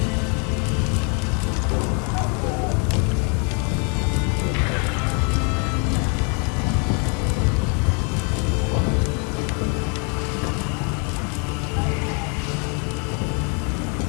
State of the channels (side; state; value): right; quieter; 37.2 dB